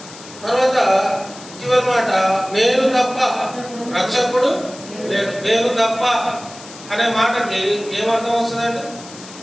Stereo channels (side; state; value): left; noise; hiss, 17 dB below the sound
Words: తర్వాత చివరి మాట, నేను తప్ప రక్షకుడు లేడు. నేను తప్ప అనే మాటకి ఏమర్థం వస్తుందండి?